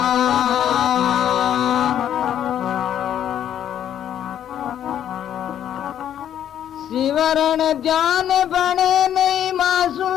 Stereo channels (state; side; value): quieter; right; 10.2 dB